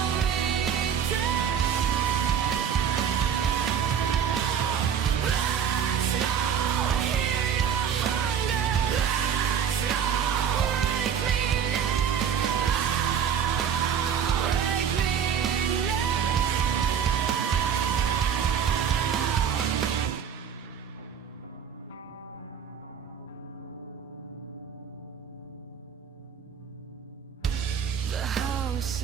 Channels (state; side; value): quieter; left; 8.0 dB